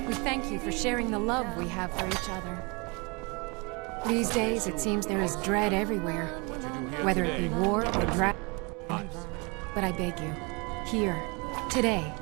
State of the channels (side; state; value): left; quieter; 29.6 dB